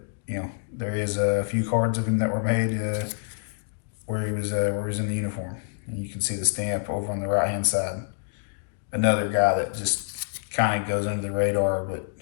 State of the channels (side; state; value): right; silent; digital silence